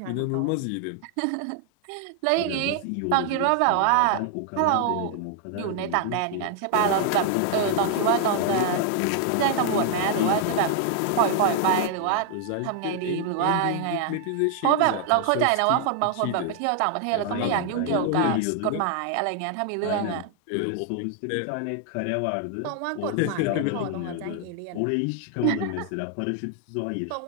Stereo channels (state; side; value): different; both; correlation 0.00